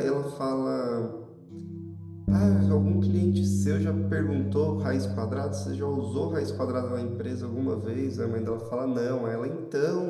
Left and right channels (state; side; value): identical; both; correlation 1.00